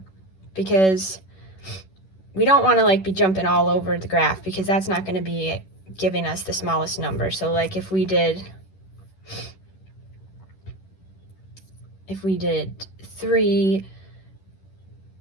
because we don't want to like be jumping all over the graph, because that's not going to be giving us the smallest number. So like if we did 3,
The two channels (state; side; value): late; right; 11 ms